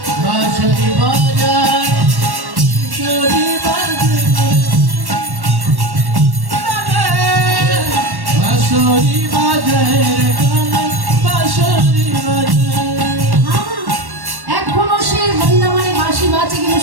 বাঁশরি বাজায়, বাঁশরি বাঁশরি বাজায় রে কানাই, বাঁশরি বাজায়। এখনো সে বৃন্দাবনে বাঁশি বাজে, কিন্তু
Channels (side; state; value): left; late; 1.1 ms